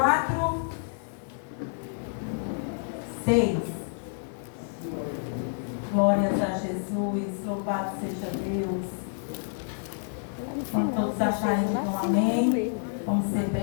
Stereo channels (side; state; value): right; silent; digital silence